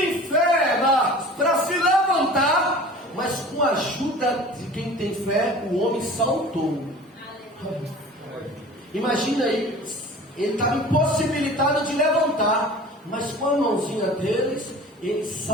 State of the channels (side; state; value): both; normal; correlation 0.42